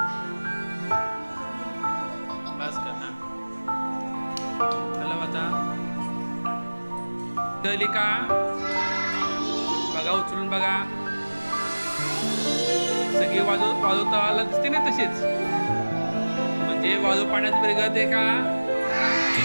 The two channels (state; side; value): inverted; both; correlation -1.00